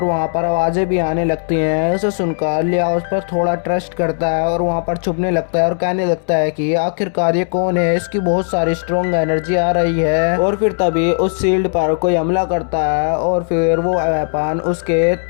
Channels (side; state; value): right; silent; digital silence